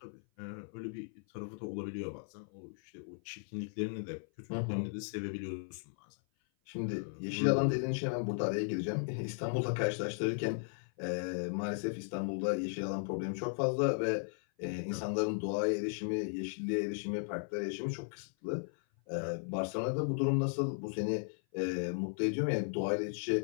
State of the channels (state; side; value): silent; right; 54 dB below the other